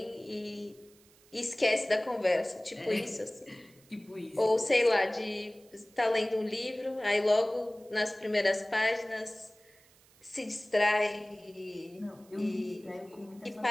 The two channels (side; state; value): right; noise; hiss, 28 dB below the sound